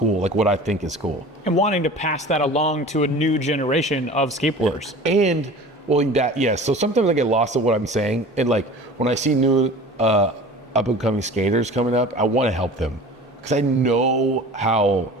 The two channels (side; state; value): both; normal; correlation 0.40